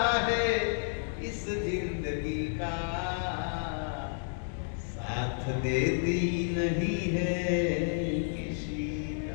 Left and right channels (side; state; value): right; silent; digital silence